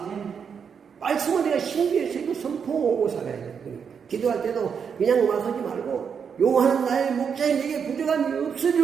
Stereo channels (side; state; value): left; quieter; 6.8 dB